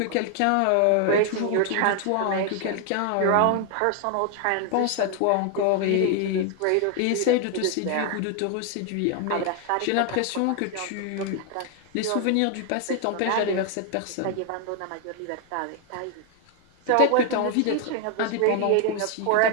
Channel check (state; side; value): different; both; correlation 0.00